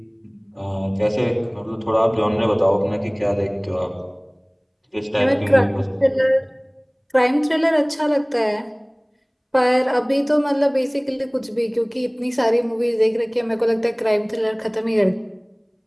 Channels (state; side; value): identical; both; correlation 1.00